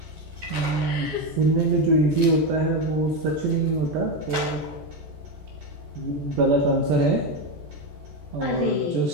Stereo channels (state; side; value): late; left; 14 ms